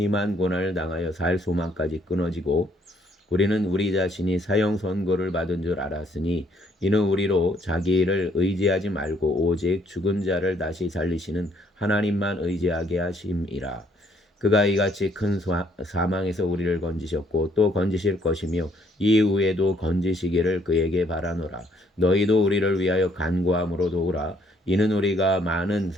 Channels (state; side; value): normal; both; correlation 0.66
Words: 고난을 당하여 살 소망까지 끊어지고 우리는 우리 자신이 사형 선고를 받은 줄 알았으니 이는 우리로 자기 일을 의지하지 말고 오직 죽은 자를 다시 살리시는 하나님만 의지하게 하심이라. 그가 이같이 큰 사망에서 우리를 건지셨고 또 건지실 것이며 이후에도 건지시기를 그에게 바라노라. 너희도 우리를 위하여 간구함으로 도우라. 이는 우리가 많은